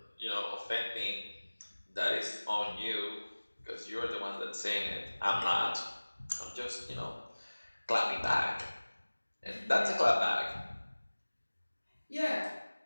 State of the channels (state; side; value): inverted; both; correlation -1.00